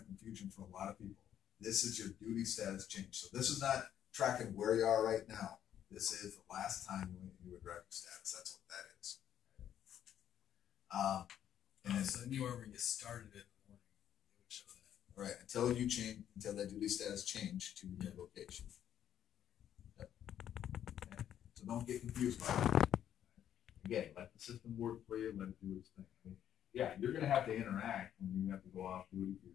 confusion for a lot of people. This is your duty status change. So this is not tracking where you are right now. This is the last time you were driving status. That's what that is. And so anywhere where you started it in the morning, it would show that. Right, until that duty status change to your location. Yep. Okay. So don't get confused by it. Again, let the system work for you, let it do its thing. I mean, yeah, you're going to have to interact when you have to go off duty for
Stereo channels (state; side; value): quieter; right; 10.2 dB